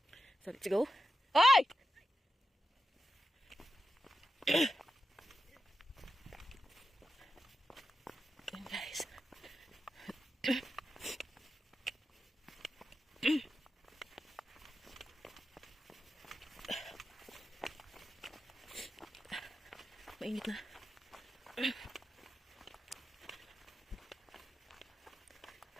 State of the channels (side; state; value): both; normal; correlation 0.90